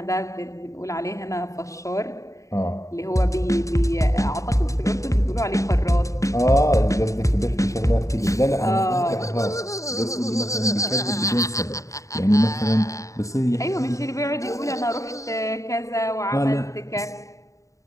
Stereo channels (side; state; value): right; late; 0.16 ms